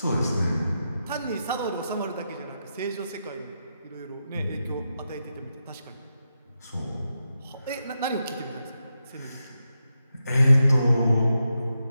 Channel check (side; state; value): both; inverted; correlation -0.87